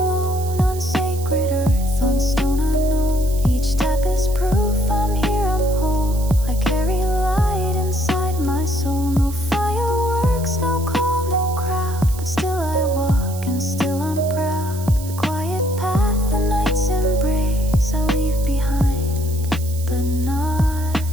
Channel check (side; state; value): right; noise; hiss, 15 dB below the sound